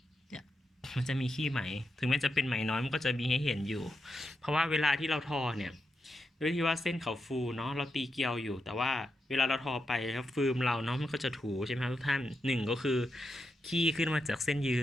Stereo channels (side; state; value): both; normal; correlation 0.85